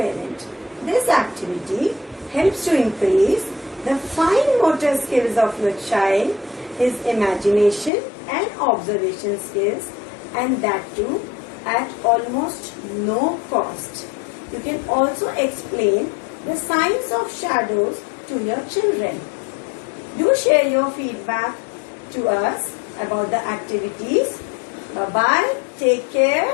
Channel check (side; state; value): right; drops out; at 7.9 s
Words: this activity helps to increase the fine motor skills of your child, his imagination and observation skills, and that too at almost no cost. You can also explain the science of shadows to your children. Do share your feedback to us about the activities. Bye-bye. Take